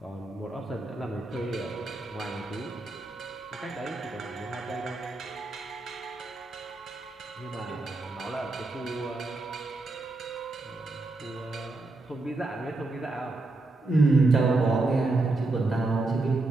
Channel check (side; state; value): left; quieter; 3.1 dB